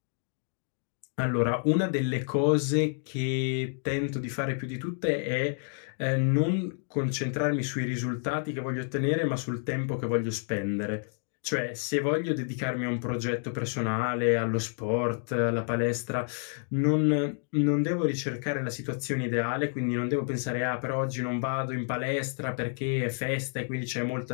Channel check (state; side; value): silent; right; 58 dB below the other